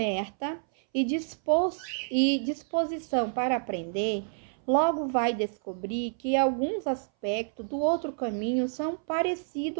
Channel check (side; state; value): left; silent; 59 dB below the other